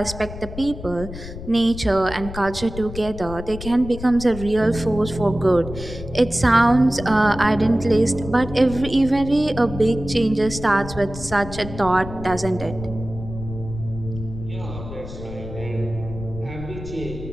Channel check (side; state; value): left; noise; rumble, 11 dB below the sound